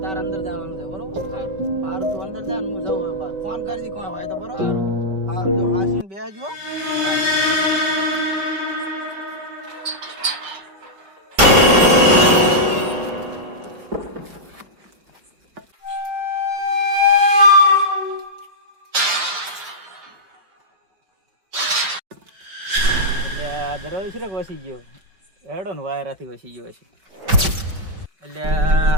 તાર અંદર જવાનું છે બરોબર? સારું. મારું તું અંદર જા ને હું જઉં હવે બહાર. ફોન કરજી કોઈ હોય તો બરોબર? સારું. હારું જો હાસીને બેસજો. એટલે આ દરવાજો છે ને વસી ગયો હેડો ને વાયરાથી વસી ગયો છે. એટલે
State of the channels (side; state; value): left; late; 5.2 ms